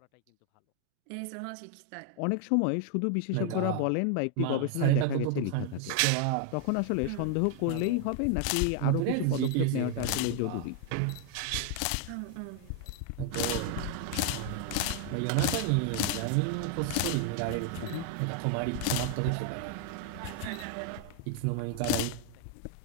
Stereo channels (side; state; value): both; different; correlation 0.00